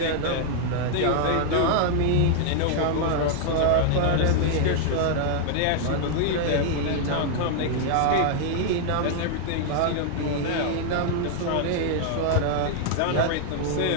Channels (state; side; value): different; both; correlation 0.00